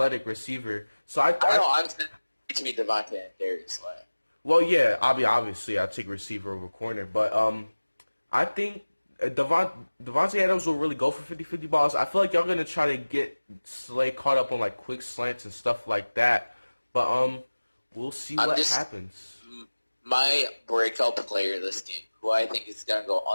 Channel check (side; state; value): both; inverted; correlation -1.00